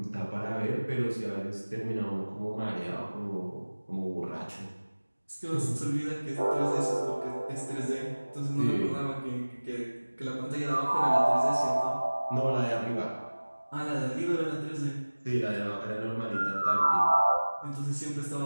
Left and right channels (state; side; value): inverted; both; correlation -1.00